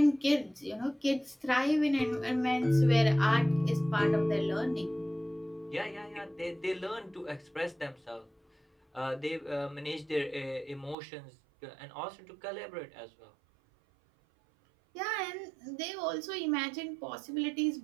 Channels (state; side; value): drops out; left; at 11.0 s